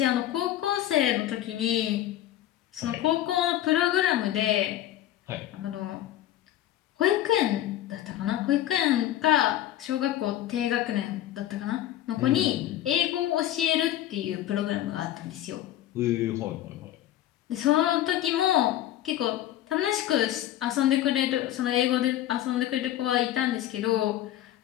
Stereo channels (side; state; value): right; quieter; 13.0 dB